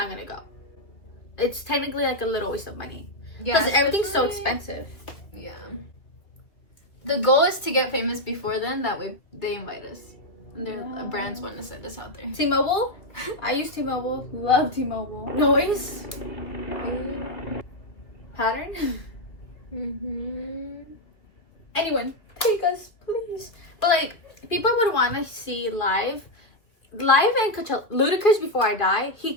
gonna go. It's technically like a little waste of money. Yeah, Because everything's so especially- expensive. Yeah. The goal is to get famous before then. That way they invite us. And their brands want to send us out there. T-Mobile? I use T-Mobile. Love T-Mobile. Noise? Pattern? Anyone, take us, please. But like, people would want to see live and Coachella. Ludacris, before I die, he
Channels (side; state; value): right; late; 2.2 ms